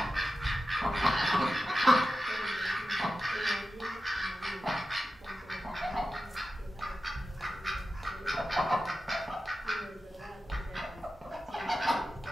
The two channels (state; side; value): normal; both; correlation 0.93